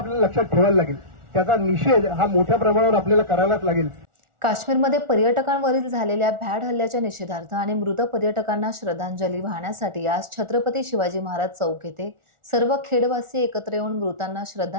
लक्षात ठेवायला लागेल. त्याचा निषेध हा मोठ्या प्रमाणावर आपल्याला करायलाच लागेल. काश्मीरमध्ये पर्यटकांवरील झालेल्या भ्याड हल्ल्याच्या निषेधार्थ आणि मृत पर्यटकांना श्रद्धांजली वाहण्यासाठी आज छत्रपती शिवाजी महाराज चौक येथे सर्व खेडवासी एकत्र येऊन मृतांना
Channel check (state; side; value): late; left; 1.4 ms